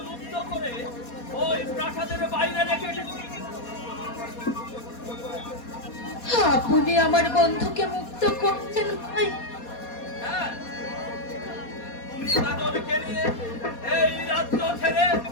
মুক্ত করে ওই প্রাসাদের বাইরে রেখে এসেছি। আপনি আমার বন্ধুকে মুক্ত করছেন ভাই? হ্যাঁ, তুমি কাজলকে নিয়ে এই রাজ্য ছেড়ে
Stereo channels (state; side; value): late; right; 4.2 ms